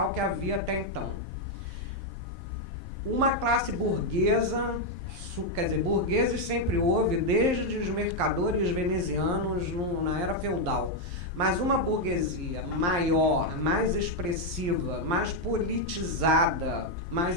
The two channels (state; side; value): late; left; 11 ms